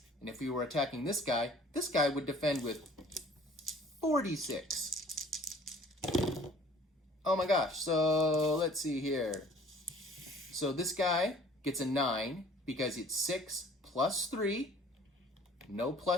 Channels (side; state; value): both; normal; correlation 0.52